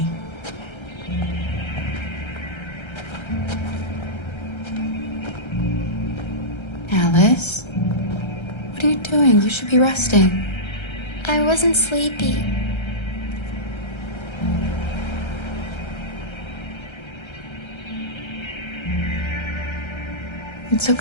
Alice? What are you doing? You should be resting. I wasn't sleepy. It's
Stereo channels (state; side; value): late; right; 1.3 ms